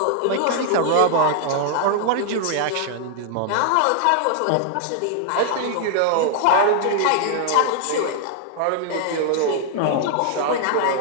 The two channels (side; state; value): both; different; correlation 0.00